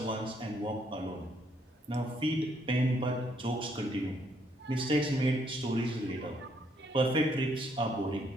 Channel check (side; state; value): both; normal; correlation 0.71